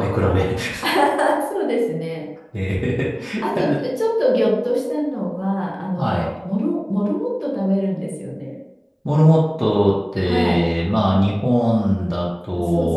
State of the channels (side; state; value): both; identical; correlation 1.00